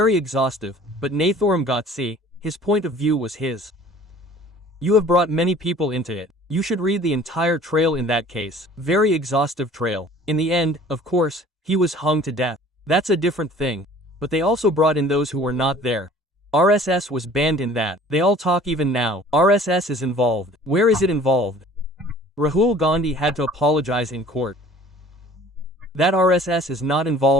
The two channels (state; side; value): normal; both; correlation 0.49